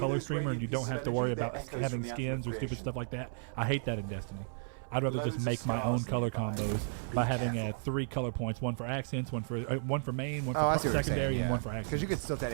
streamer, and you don't have to worry about having skins or stupid stuff like that. I hate that in Destiny. I'd rather just make my own color combos by having 3 color points: one for accents, one for main, one for secondary, and one for accents. Because you could still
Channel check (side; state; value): left; silent; 55 dB below the other